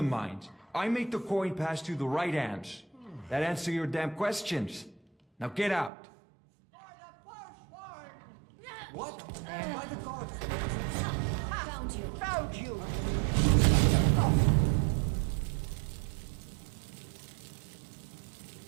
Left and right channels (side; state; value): left; drops out; at 5.9 s